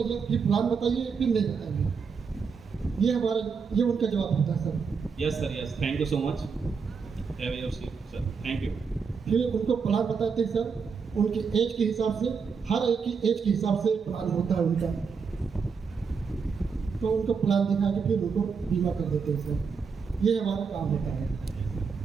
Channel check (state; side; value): quieter; left; 5.7 dB